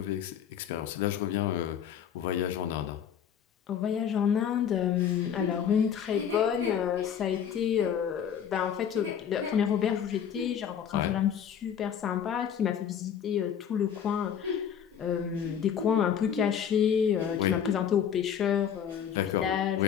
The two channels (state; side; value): quieter; right; 8.4 dB